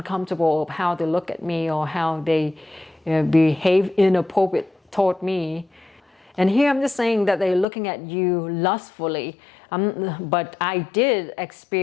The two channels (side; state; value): right; drops out; at 7.7 s